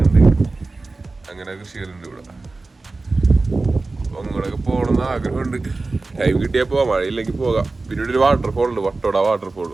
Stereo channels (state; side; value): quieter; left; 3.5 dB